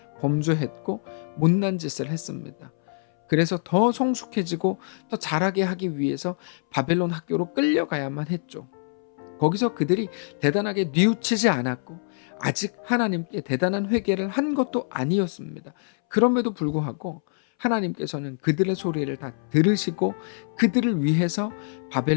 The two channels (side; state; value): right; silent; 62 dB below the other